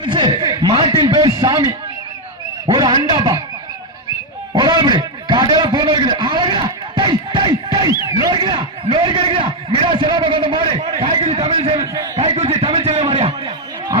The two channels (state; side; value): normal; both; correlation 0.03